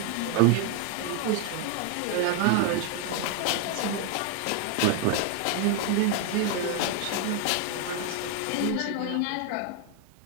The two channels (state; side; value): different; both; correlation 0.01